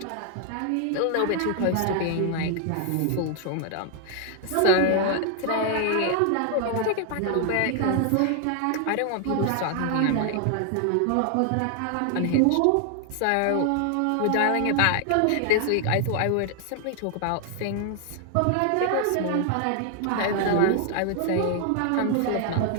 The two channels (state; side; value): different; both; correlation 0.00